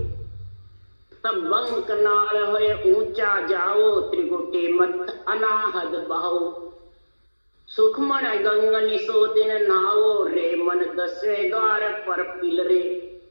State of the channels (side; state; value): both; inverted; correlation -1.00